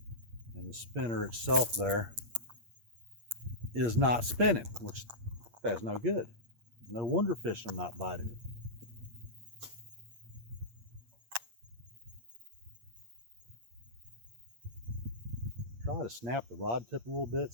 and the spinner itself there is not spinning, which that's no good. No wonder fish are not biting it. Try to snap the rod tip a little bit,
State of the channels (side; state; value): left; late; 8.6 ms